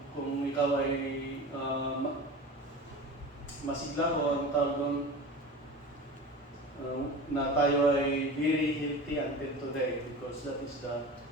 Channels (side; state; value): both; normal; correlation 0.33